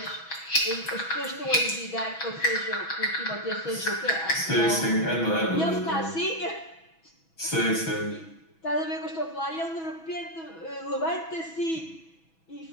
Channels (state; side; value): late; right; 6.1 ms